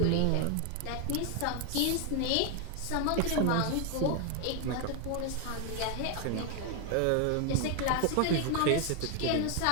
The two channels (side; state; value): both; different; correlation 0.01